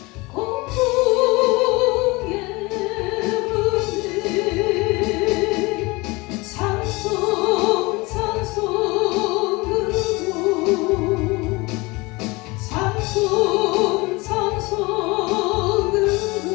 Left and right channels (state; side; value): quieter; right; 24.0 dB